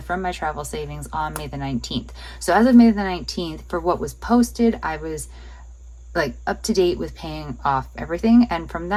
from my travel savings on May the 19th. So as of May the 19th, for what was posted, I was like up to date with paying off everything, and from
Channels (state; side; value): identical; both; correlation 1.00